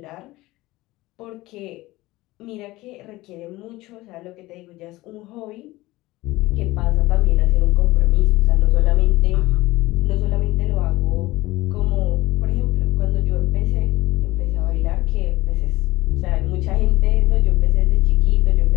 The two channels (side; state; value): right; quieter; 19.0 dB